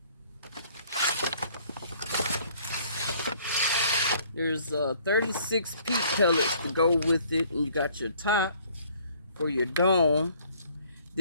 There's 36 peat pellets to go with it, and you got your top for your dome.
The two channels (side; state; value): both; inverted; correlation -0.59